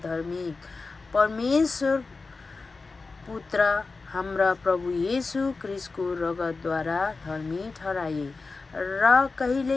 धार्मिक। परमेश्वर पुत्र हाम्रा प्रभु येशू ख्रिस्टको रगतद्वारा धर्मी ठहराए र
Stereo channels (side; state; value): right; quieter; 4.0 dB